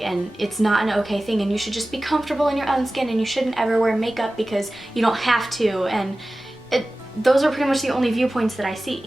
it's not an okay thing and you should just be comfortable in your own skin and you shouldn't ever wear makeup because you don't have to, and those are pretty much the only viewpoints that I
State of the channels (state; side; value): noise; left; rumble, 27 dB below the sound